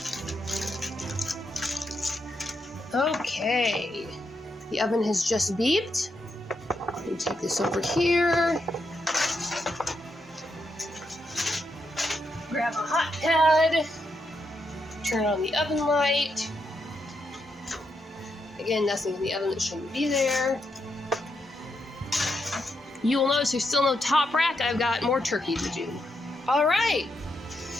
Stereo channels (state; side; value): normal; both; correlation 0.82